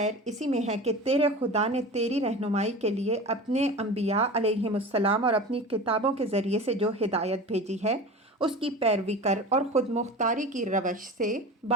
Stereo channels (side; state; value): both; normal; correlation 0.33